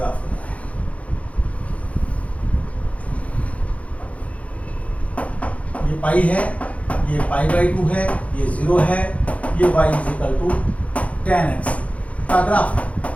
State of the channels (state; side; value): late; right; 0.066 ms